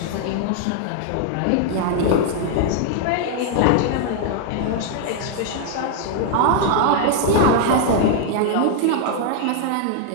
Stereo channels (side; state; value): both; different; correlation 0.00